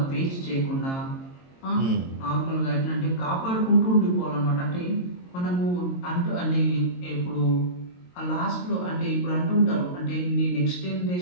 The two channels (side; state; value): right; late; 22 ms